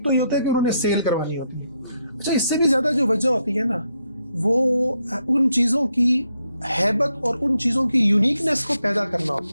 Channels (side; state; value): both; inverted; correlation -0.79